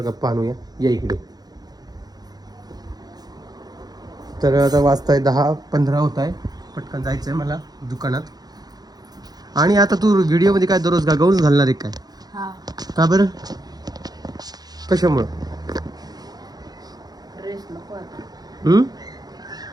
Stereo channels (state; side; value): late; left; 0.19 ms